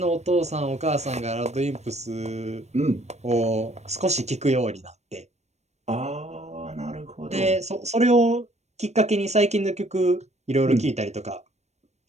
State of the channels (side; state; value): left; late; 0.32 ms